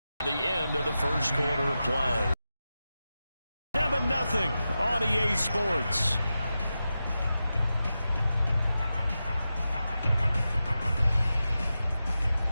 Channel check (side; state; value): both; inverted; correlation -0.92